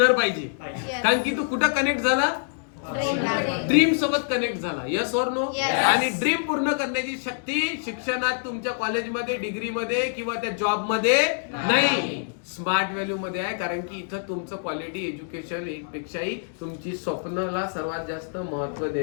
पाहिजे, कारण की तू कुठं कनेक्ट झाला, ड्रीम सोबत कनेक्ट झाला. यस और नो? आणि ड्रीम पूर्ण करण्याची शक्ती शिक्षणात, तुमच्या कॉलेजमध्ये, डिग्रीमध्ये किंवा त्या जॉब मध्ये नाही, स्मार्ट व्हॅल्यू मध्ये आहे. कारण की इथं तुमचं क्वालिटी एज्युकेशन पेक्षाही तुमची स्वप्नाला सर्वात जास्त महत्व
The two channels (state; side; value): silent; right; digital silence